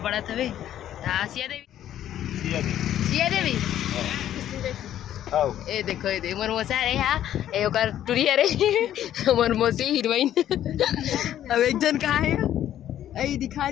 था वे। सिया देवी ए देखो, ये देख मोर मौसा रे, हा ए ओकर टुरी रे मोर मौसी हीरोइन। अब एक जन कहाँ है? आई दिखा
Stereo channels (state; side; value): quieter; right; 11.5 dB